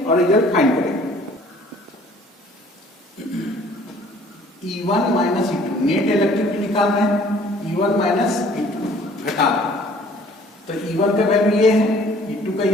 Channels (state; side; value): normal; both; correlation 0.55